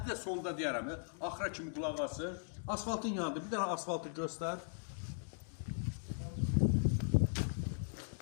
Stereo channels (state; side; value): silent; right; digital silence